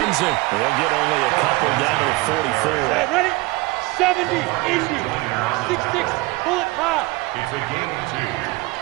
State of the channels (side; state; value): left; quieter; 22.8 dB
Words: They'll get only a couple down to the 44. Hey, ready? 70, easy. 6-6, pull it high. It's a gain of